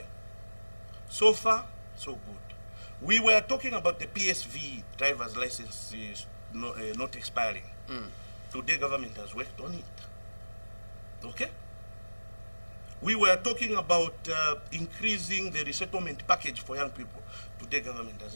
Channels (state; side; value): inverted; both; correlation -1.00